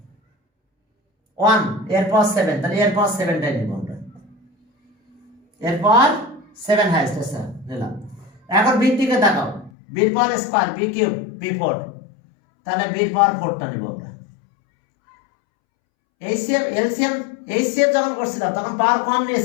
1, এর পাওয়ার 7, তাহলে এর পাওয়ার 7টাই নিব আমরা, এর পাওয়ার 7 হাইয়েস্ট আছে নিলাম। এখন বি দিকে তাকাও, বির পাওয়ার স্কয়ার বি কিউব b4, তাহলে বির পাওয়ার 4টা নিব আমরা। এইচসিএফ যখন করছিলাম তখন পাওয়ার কম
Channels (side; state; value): right; drops out; at 9.7 s